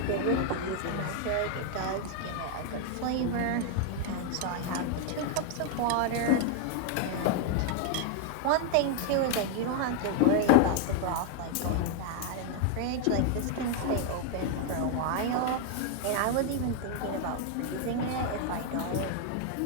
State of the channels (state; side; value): different; both; correlation 0.00